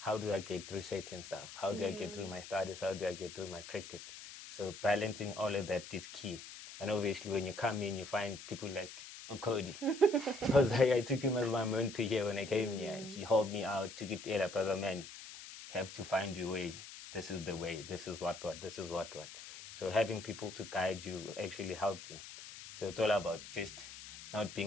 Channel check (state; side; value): noise; left; hiss, 13 dB below the sound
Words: do I get through certain stuff? How do I get through my studies? How do I get through my cricket? So balancing all of that is key. And obviously when you come in, you find people like Codey. Because I took him as my mentor here when I came here. He helped me out, took it to brother, man, you have to find your way. This is the way. This is what. This is what. So having people to guide you will actually help you. So it's all about just not